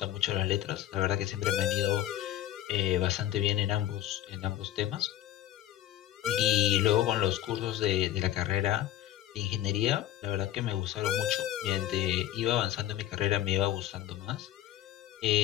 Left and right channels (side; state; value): right; quieter; 12.9 dB